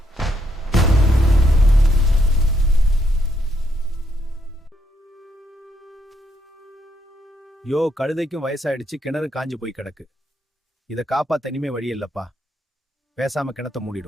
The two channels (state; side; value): normal; both; correlation 0.75